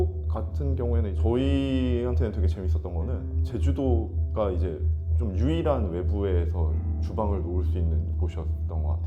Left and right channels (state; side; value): identical; both; correlation 1.00